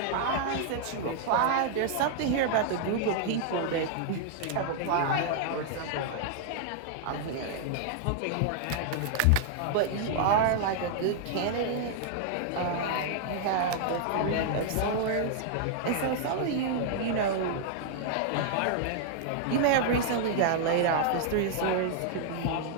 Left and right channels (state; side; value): different; both; correlation -0.01